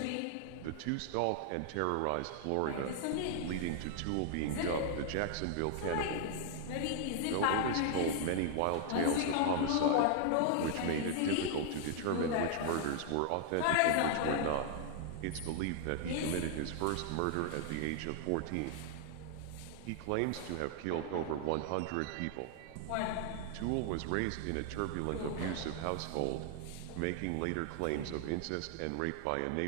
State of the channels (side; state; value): both; different; correlation 0.00